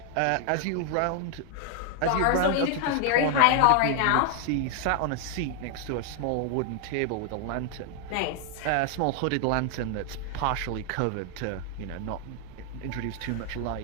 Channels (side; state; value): both; different; correlation 0.00